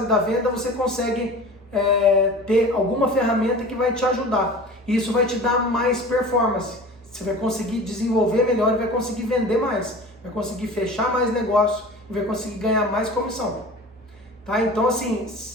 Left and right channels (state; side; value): normal; both; correlation 0.38